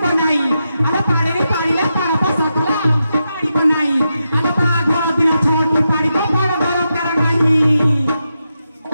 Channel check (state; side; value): inverted; both; correlation -0.87